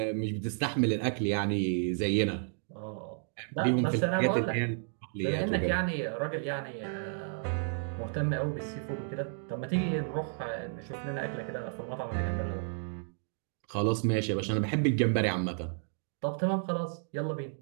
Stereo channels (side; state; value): left; silent; digital silence